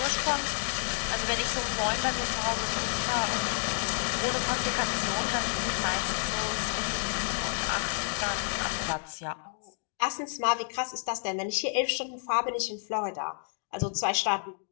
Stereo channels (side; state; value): right; silent; digital silence